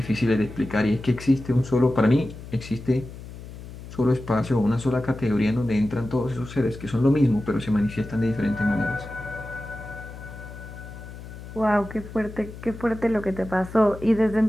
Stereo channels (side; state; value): left; noise; hum, 13 dB below the sound